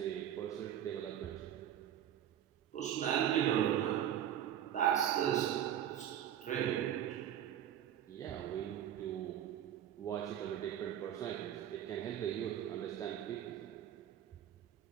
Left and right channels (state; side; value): quieter; left; 10.6 dB